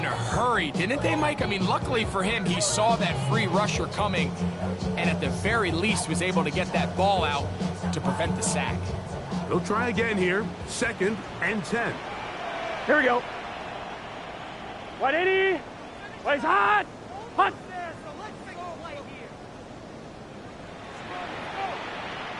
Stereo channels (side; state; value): both; identical; correlation 1.00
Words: a hurry, didn't they, Mike? I mean, luckily for him, he saw that free rusher coming and at the very least was able to get that ball out to prevent the sack. He'll try again here. 2nd and 10. Here we go. 180. Plays hot. Hot.